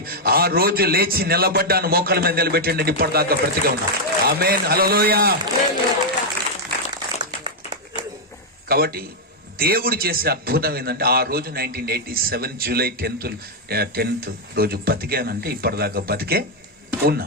ఆ రోజు లేచి నిలబడ్డాను, మోకాల మీద నిలబెట్టండి, ఇప్పటిదాకా బ్రతిగా ఉన్నా. ఆమేన్, హల్లెలూయా. కాబట్టి దేవుడు చేసే అద్భుతం ఏంటంటే, ఆ రోజు 1987 జూలై 10th రోజు బతికానంటే ఇప్పటిదాకా బతికే ఉన్నా.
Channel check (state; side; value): normal; both; correlation -0.01